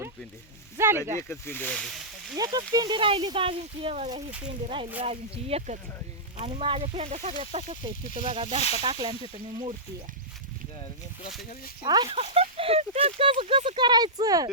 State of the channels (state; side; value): normal; both; correlation -0.16